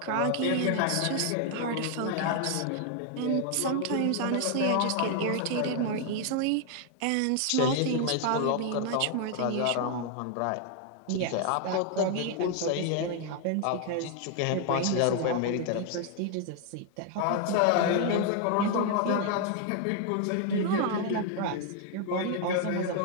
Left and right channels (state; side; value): different; both; correlation 0.00